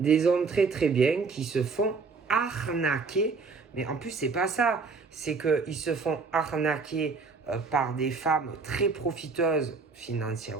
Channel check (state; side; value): quieter; left; 4.6 dB